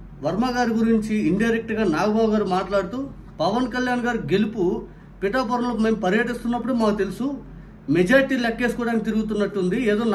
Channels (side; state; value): both; identical; correlation 1.00